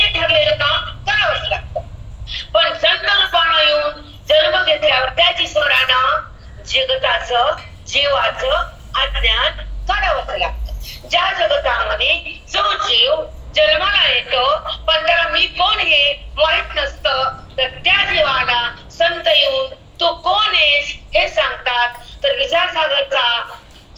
ठरलेलं काम करावंच लागतं. पण संत रूपानं येऊन जन्म घेतल्यावर त्याच ईश्वरानं जगताचं, जीवाचं अज्ञान काढावंच लागतं. ज्या जगतामध्ये जो जीव जन्माला येतो पण त्याला मी कोण हे माहित नसतं, तर त्या जीवाला संत येऊन तू कोण आहेस हे सांगतात. तर विचारसागरचा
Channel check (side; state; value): both; identical; correlation 1.00